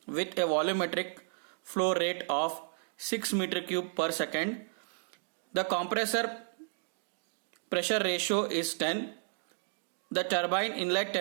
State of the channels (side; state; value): left; silent; digital silence